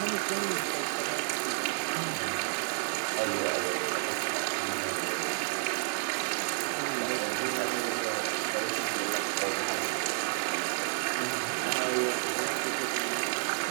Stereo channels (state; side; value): silent; left; 57 dB below the other